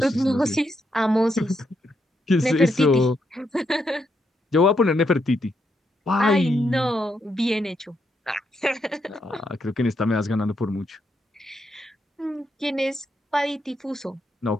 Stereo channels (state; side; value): normal; both; correlation 0.79